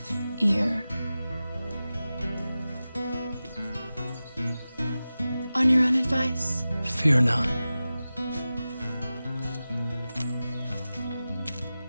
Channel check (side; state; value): both; inverted; correlation -0.95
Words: ear. On your own advice. Fear not.